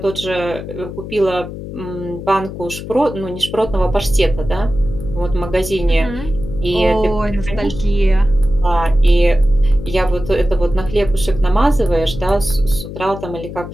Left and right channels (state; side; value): noise; left; hum, 10 dB below the sound